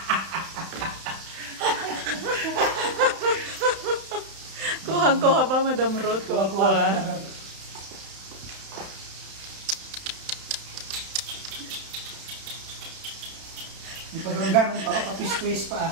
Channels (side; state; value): left; late; 31 ms